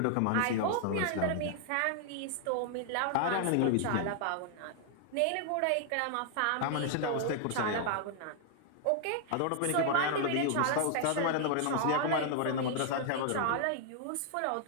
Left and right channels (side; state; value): both; different; correlation 0.00